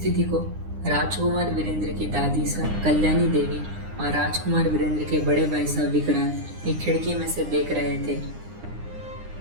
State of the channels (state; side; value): late; left; 9.8 ms